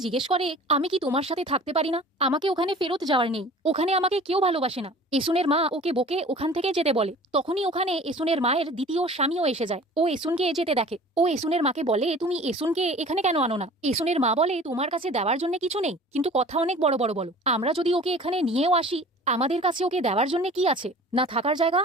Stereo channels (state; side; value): normal; both; correlation 0.44